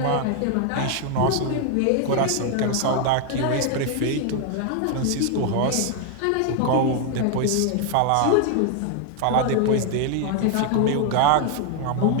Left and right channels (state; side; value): different; both; correlation 0.00